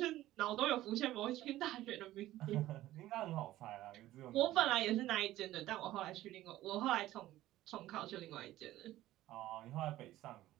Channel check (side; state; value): left; quieter; 15.1 dB